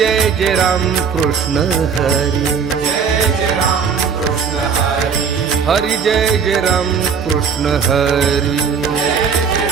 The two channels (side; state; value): left; quieter; 6.4 dB